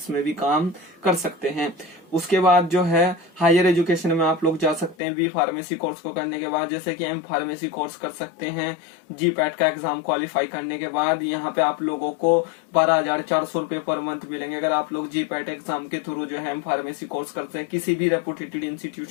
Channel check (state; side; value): drops out; right; at 5.0 s